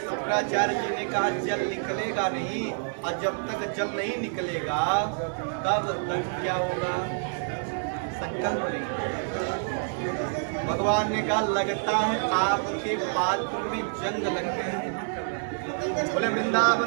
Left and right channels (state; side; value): silent; left; digital silence